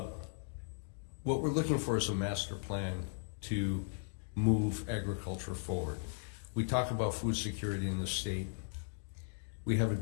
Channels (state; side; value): silent; right; digital silence